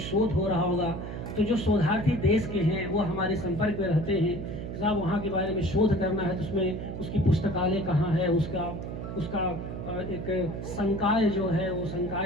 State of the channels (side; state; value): right; noise; hum, 7 dB below the sound